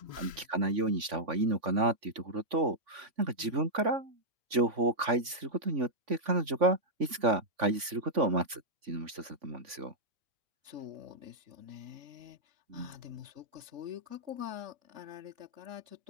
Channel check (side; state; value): left; late; 3.5 ms